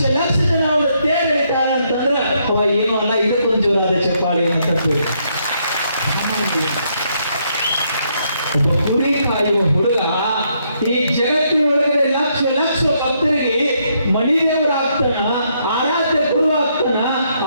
ಲಕ್ಷ ಜನ ಅವರ ತೇರು ಎಳಿತಾರೆ ಅಂತಂದ್ರ ಅವ ಏನೂ ಅಲ್ಲ, ಇದಕ್ಕೊಂದು ಜೋರಾದ ಚಪ್ಪಾಳಿ ಅಂತ ಹೇಳಿ. ಒಬ್ಬ ಕುರಿ ಕಾಯುವ ಹುಡುಗ ಈ ಜಗತ್ತಿನೊಳಗಡೆ ಲಕ್ಷ ಲಕ್ಷ ಭಕ್ತರಿಗೆ ಮಣಿದೇವರಾಗ್ತಾನ, ಆರಾಧ್ಯ ಗುರು ಆಗ್ತಾನ.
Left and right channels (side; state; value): both; inverted; correlation -0.74